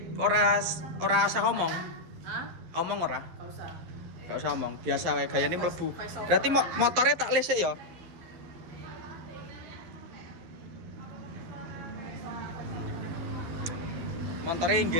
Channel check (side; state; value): left; late; 12 ms